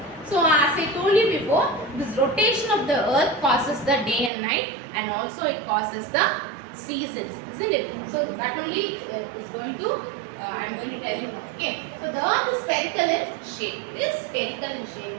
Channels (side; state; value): left; drops out; at 4.3 s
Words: So as I told you before, this rotation of the earth causes the day and night and also it causes the seasons, isn't it? So that only is going to I am going to tell you now. Okay. So the earth is spherical in shape. It is spherical in shape.